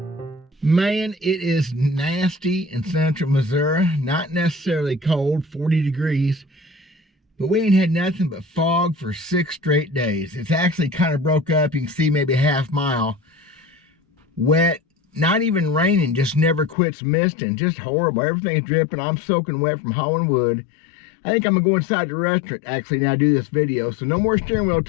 Man, it is nasty in central Missouri. Not necessarily cold, 40 degrees. But we ain't had nothing but fog for 6 straight days. It's actually kind of broke up. You can see maybe a half mile. Wet, not even raining, just never quits misting. Just horrible. Everything's dripping. I'm soaking wet from hauling wood. I think I'm going to go inside the restaurant actually now do this video. So no more steering wheel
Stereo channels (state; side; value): drops out; right; at 16.8 s